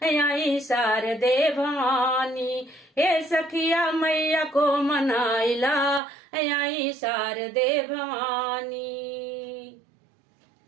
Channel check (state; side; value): drops out; left; at 6.0 s